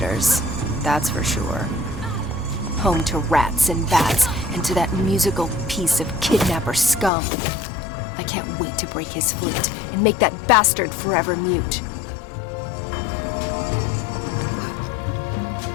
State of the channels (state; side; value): drops out; right; at 7.1 s